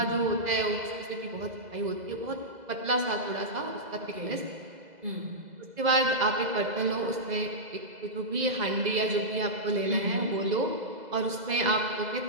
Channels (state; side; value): late; left; 2.0 ms